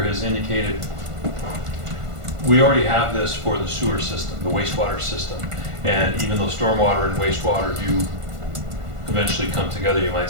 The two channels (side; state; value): left; late; 1.5 ms